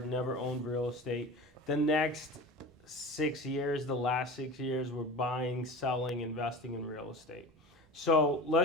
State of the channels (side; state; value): both; normal; correlation 0.33